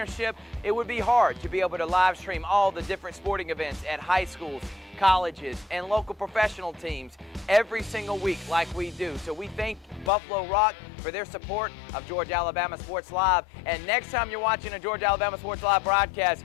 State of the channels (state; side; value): drops out; right; at 10.1 s